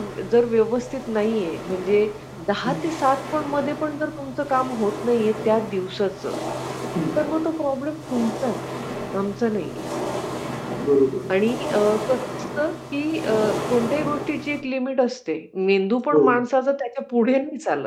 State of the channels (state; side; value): identical; both; correlation 1.00